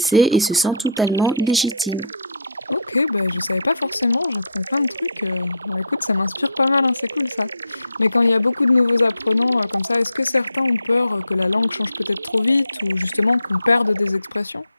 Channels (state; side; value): inverted; both; correlation -0.56